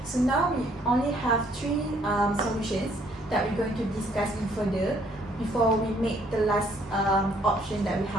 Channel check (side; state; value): both; normal; correlation 0.64